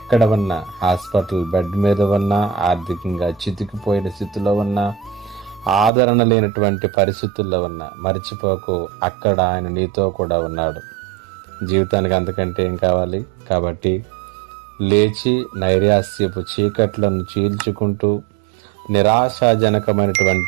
ఉన్నా, హాస్పిటల్ బెడ్ మీద ఉన్నా, ఆర్థికంగా చితికిపోయిన స్థితిలో ఉన్నా, ఆదరణ లేనటువంటి పరిస్థితుల్లో ఉన్నా మర్చిపోకు, అక్కడ ఆయన నీతో కూడా ఉన్నాడు. జీవితానికి అంతకంటే ఏం కావాలి? కాబట్టి లేచి నైరాస్యపు చీకట్లను చీల్చుకుంటూ,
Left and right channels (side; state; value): left; drops out; at 5.9 s